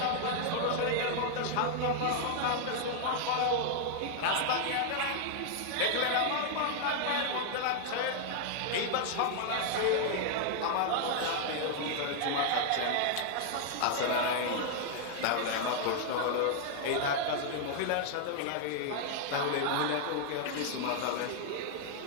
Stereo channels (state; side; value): different; both; correlation 0.00